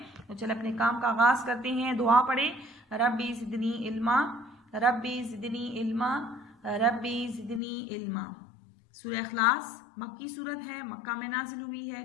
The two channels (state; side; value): drops out; right; at 7.6 s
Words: तो चल अपने काम का आगाज करते हैं। दुआ पढ़े, रब्बी ज़िदनी इल्मा, रब्बी ज़िदनी इल्मा, रब्बी ज़िदनी इल्मा। सूरह इखलास मक्की सूरत है, मक्का में नाजिल हुई है।